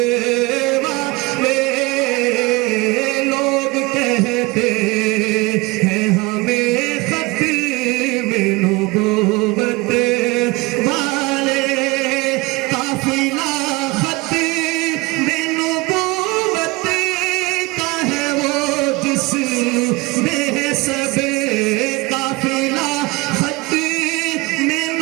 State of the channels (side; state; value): left; quieter; 23.7 dB